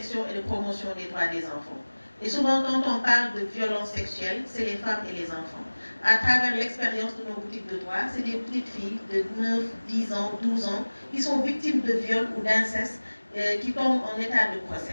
et de promotion des droits des enfants. Et souvent, quand on parle de violence sexuelle, c'est les femmes et les enfants. À travers l'expérience de nos boutiques de droit, c'est des petites filles de 9, 10 ans, 12 ans qui sont victimes de viol ou d'inceste, qui tombent en état de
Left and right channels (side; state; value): both; inverted; correlation -1.00